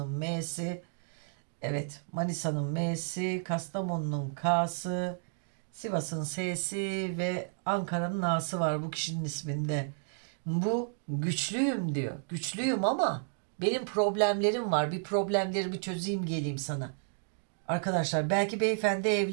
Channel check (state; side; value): silent; left; digital silence